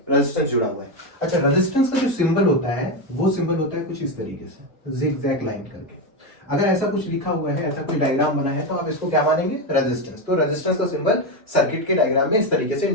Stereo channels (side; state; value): both; normal; correlation 0.11